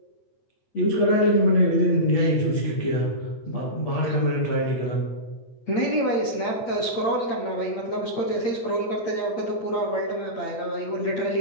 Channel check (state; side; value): late; right; 8.8 ms